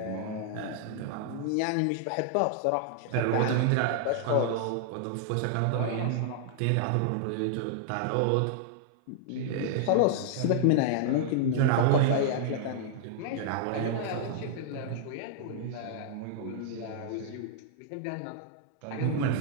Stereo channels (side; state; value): both; different; correlation -0.01